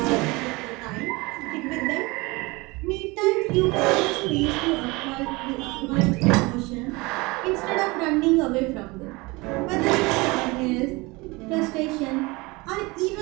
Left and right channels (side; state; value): left; quieter; 24.2 dB